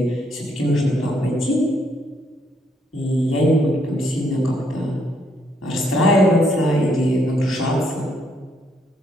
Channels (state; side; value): normal; both; correlation 0.72